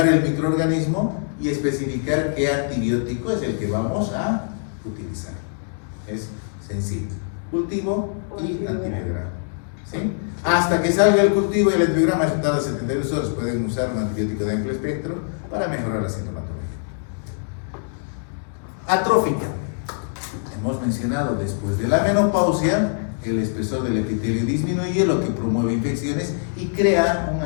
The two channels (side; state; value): right; silent; digital silence